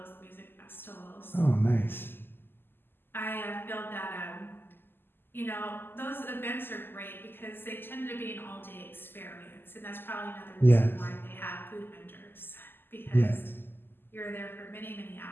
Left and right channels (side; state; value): right; late; 0.099 ms